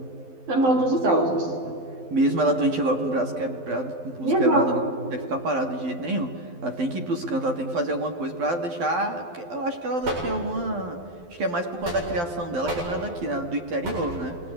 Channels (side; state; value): left; late; 12 ms